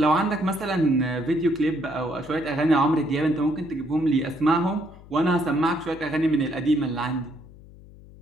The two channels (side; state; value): left; noise; hum, 21 dB below the sound